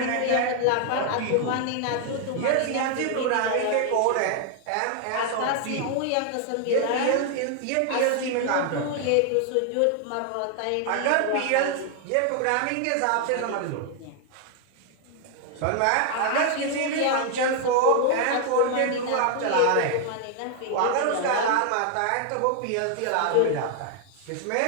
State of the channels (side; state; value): both; different; correlation 0.00